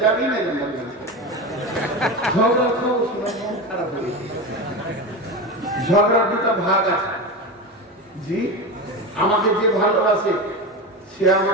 যাবি না ঝগড়া খাও, শুনে মন খারাপ হয়ে। ঝগড়ার দুটা ভাগ আছে। জি, আমাকে যে ভালোবাসে সে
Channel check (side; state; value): both; normal; correlation 0.23